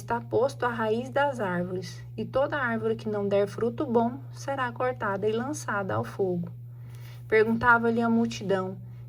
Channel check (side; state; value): both; identical; correlation 1.00